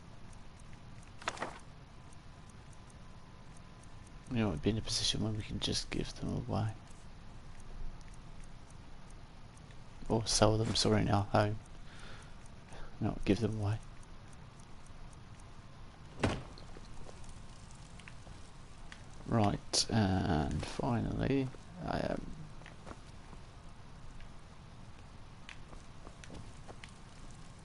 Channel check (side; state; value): both; identical; correlation 1.00